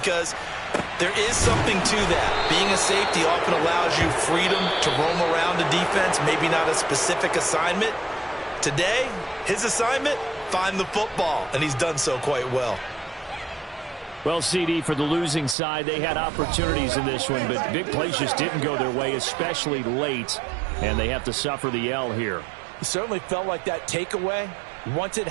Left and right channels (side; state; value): left; drops out; at 15.6 s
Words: there is something to that. Being a safety often allows you freedom to roam around the defense, maybe not a specific assignment. Today, his assignment, find the football, and he's done so quite well. Well, CD, for the losing side, they had opportunities in this one, but big plays just didn't go their way, especially late, and they have to suffer the L here. It certainly felt like that takeaway, once it